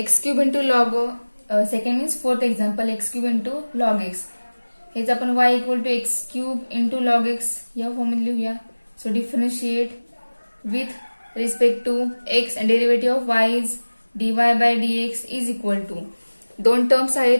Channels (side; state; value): both; inverted; correlation -1.00